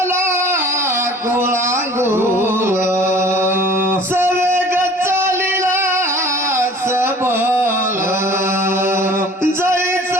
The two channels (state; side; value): normal; both; correlation 0.48